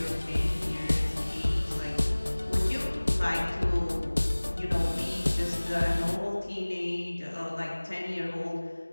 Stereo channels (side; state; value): both; inverted; correlation -1.00